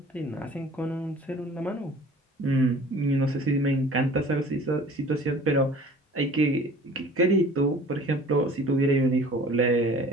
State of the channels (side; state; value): both; normal; correlation 0.47